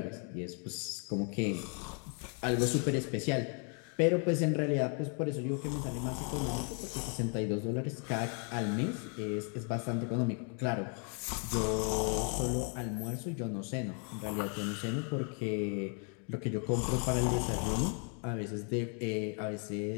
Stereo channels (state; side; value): quieter; right; 39.3 dB